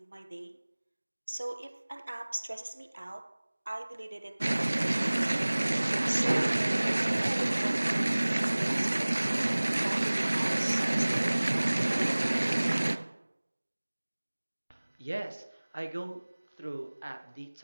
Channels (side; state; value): both; inverted; correlation -1.00